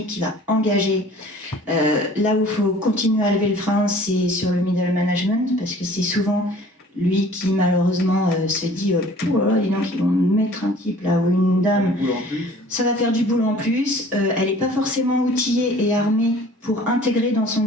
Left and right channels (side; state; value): both; normal; correlation 0.49